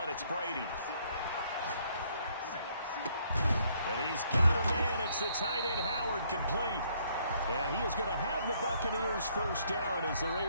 it's Brady. And he's got a man. It's the tight end Howard complete. And he is going to have the Buccaneers 1st down as they're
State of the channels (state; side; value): inverted; both; correlation -0.67